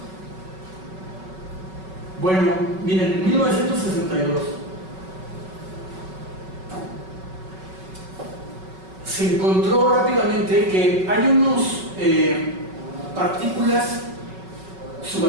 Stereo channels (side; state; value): left; late; 5.3 ms